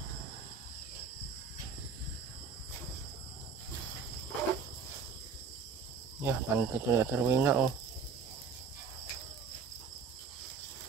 Ya, panty to na Rowena, oh.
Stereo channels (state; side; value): quieter; left; 5.4 dB